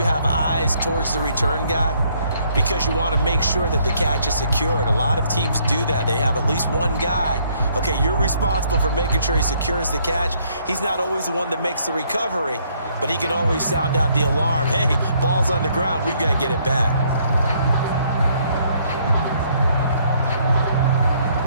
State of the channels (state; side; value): inverted; both; correlation -0.67